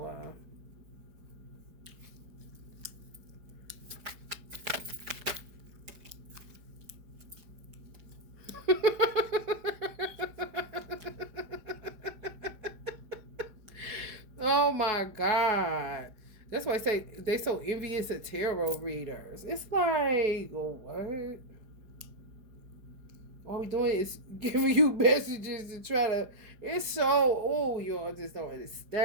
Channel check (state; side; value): late; left; 4.9 ms